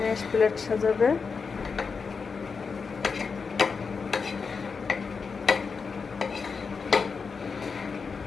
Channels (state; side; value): quieter; right; 5.2 dB